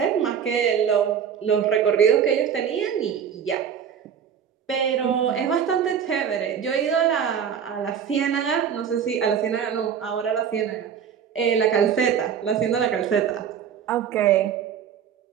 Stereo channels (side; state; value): left; quieter; 8.0 dB